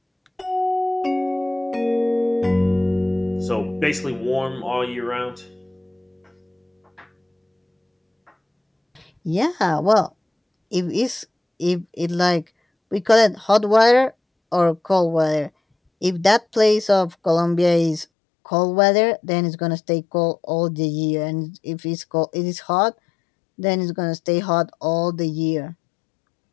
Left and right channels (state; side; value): drops out; right; at 18.1 s